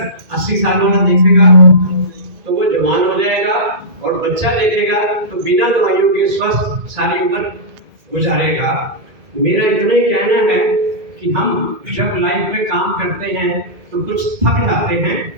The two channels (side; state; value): left; late; 2.2 ms